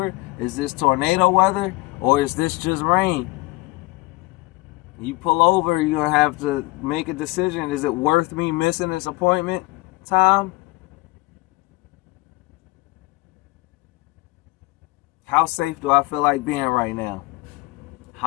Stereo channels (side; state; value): right; quieter; 22.9 dB